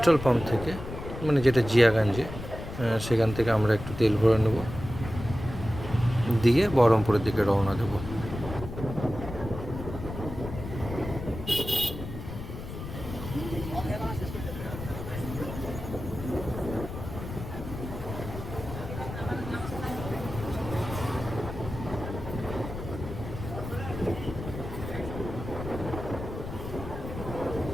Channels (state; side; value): noise; left; rumble, 9 dB below the sound